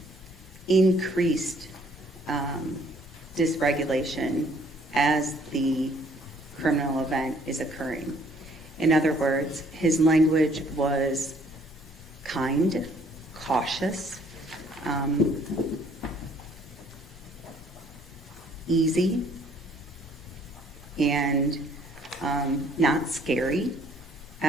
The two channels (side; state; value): both; normal; correlation 0.61